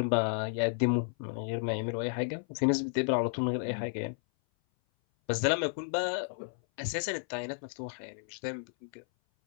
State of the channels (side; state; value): right; silent; 56 dB below the other